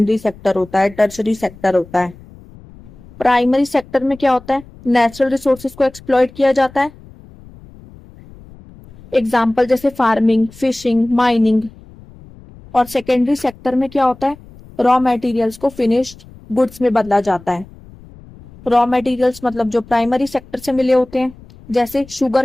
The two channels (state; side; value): noise; left; rumble, 21 dB below the sound